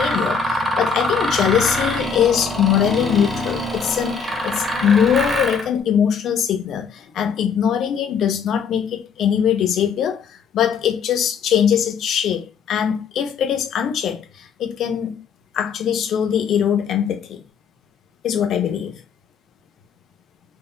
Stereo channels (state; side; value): quieter; right; 6.6 dB